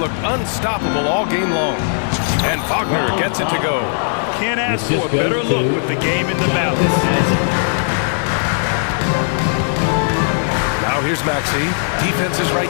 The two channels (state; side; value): silent; right; digital silence